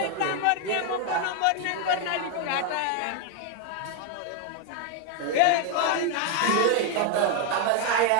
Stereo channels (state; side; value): different; both; correlation 0.01